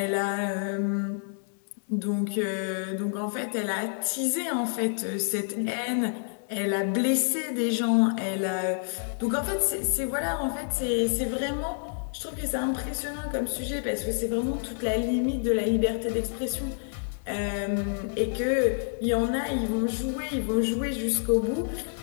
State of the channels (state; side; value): silent; right; digital silence